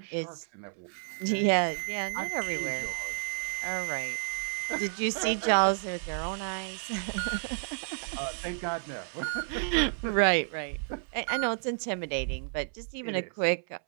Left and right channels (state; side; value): silent; left; 57 dB below the other